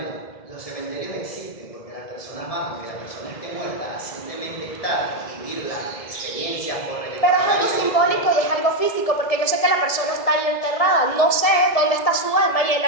los cementerios existen porque las personas van, porque la persona esté muerta, simplemente estar y vivir la experiencia por el... Pero es algo simbólico y es algo físico, porque yo sé que la persona está ahí enterrada, no sé dónde está su alma y el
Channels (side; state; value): right; late; 1.7 ms